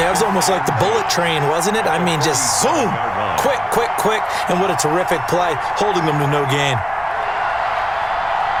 it was almost like the bullet train, wasn't it? I mean, just zoom. Quick, quick, quick. And what a terrific play, holding them to no gain.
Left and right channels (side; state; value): both; identical; correlation 1.00